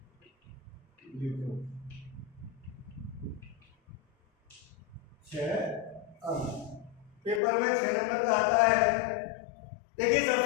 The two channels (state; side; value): drops out; right; at 7.4 s